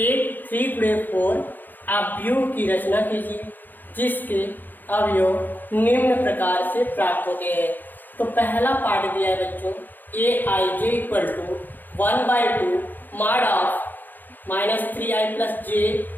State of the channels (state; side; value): late; right; 0.088 ms